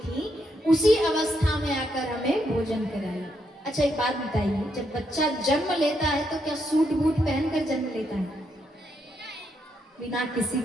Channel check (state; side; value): normal; both; correlation 0.78